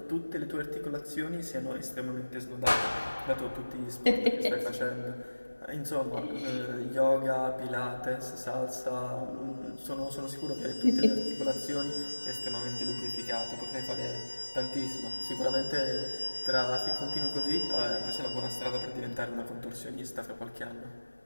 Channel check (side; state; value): both; inverted; correlation -1.00